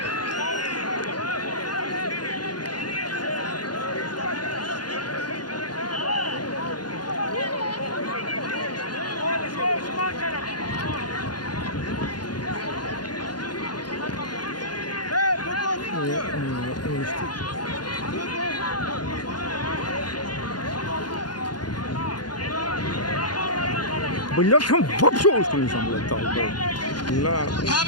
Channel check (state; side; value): late; right; 0.70 ms